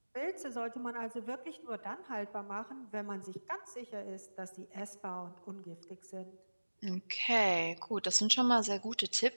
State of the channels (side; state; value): both; inverted; correlation -1.00